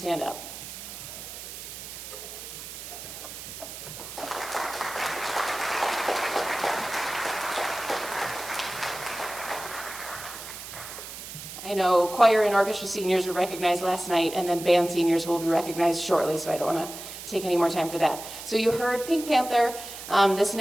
up? I know choir and orchestra seniors were recognized last night, and then band seniors will be recognized shortly, so I don't want to take any more time for that. So you heard Pink Panther. This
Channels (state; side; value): noise; right; hiss, 11 dB below the sound